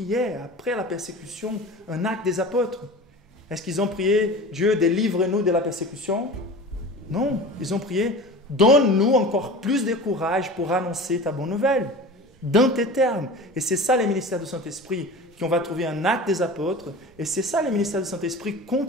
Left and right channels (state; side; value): normal; both; correlation 0.35